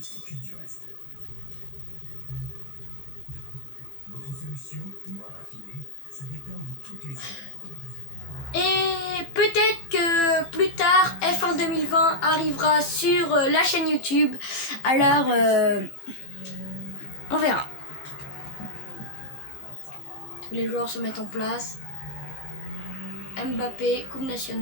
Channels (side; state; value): right; late; 15 ms